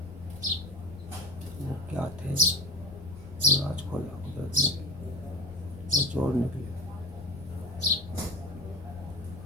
वो क्या थे वो राज खोला कुदरत ने। वो चोर निकले,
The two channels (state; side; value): noise; left; rumble, 18 dB below the sound